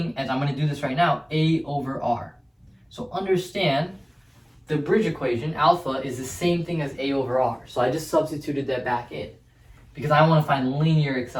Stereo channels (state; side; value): identical; both; correlation 1.00